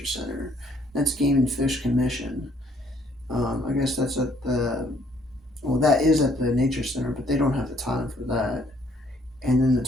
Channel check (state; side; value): normal; both; correlation 0.65